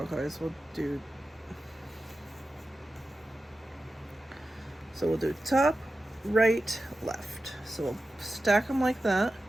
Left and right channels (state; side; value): normal; both; correlation 0.93